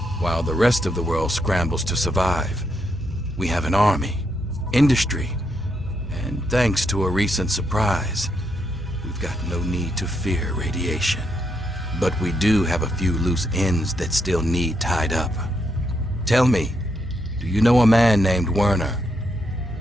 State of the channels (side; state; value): both; normal; correlation 0.79